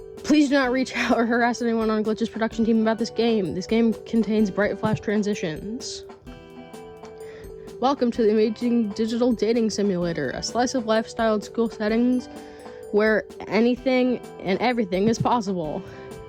Please do not reach out or harass anyone on Glitch's production team about this game. This game contains bright flash transitions. Welcome to the amazing digital dating simulator, a slice of lifestyle and school settings where anything and everything is possible.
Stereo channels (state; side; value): identical; both; correlation 1.00